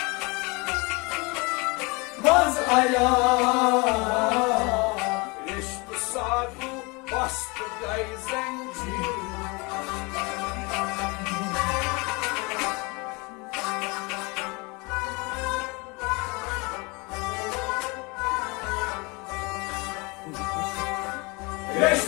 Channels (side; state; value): right; quieter; 27.7 dB